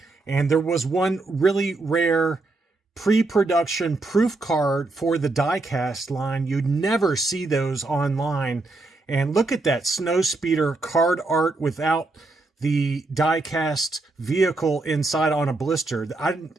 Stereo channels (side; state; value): left; quieter; 3.2 dB